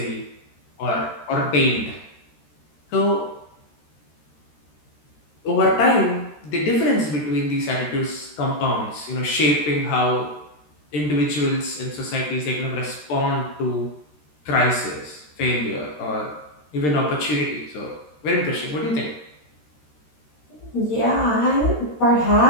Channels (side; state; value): right; late; 13 ms